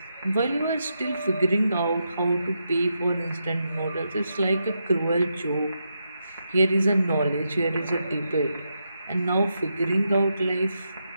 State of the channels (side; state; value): both; inverted; correlation -0.84